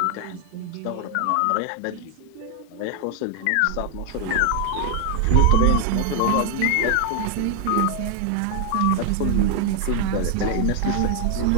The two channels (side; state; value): both; different; correlation 0.00